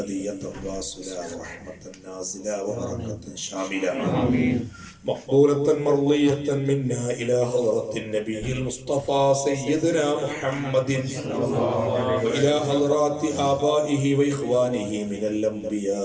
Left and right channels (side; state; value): both; identical; correlation 1.00